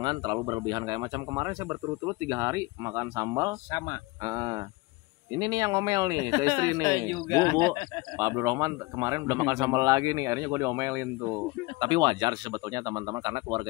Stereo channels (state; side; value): quieter; right; 23.3 dB